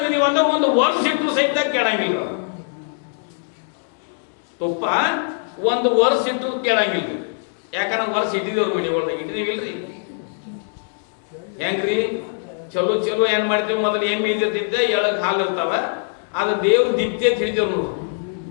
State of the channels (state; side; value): silent; right; 63 dB below the other